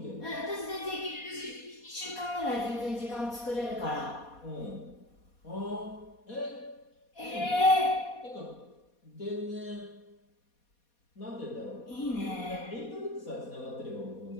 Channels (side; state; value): right; late; 4.2 ms